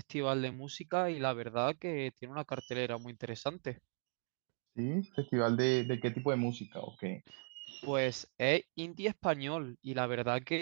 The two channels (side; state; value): left; silent; 52 dB below the other